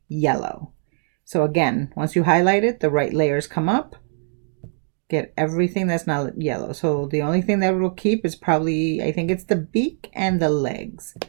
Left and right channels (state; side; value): silent; left; 59 dB below the other